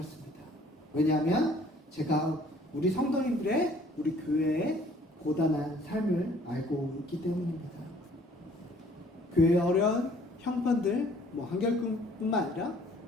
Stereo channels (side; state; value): both; normal; correlation 0.57